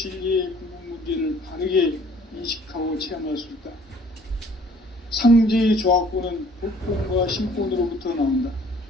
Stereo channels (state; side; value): normal; both; correlation 0.56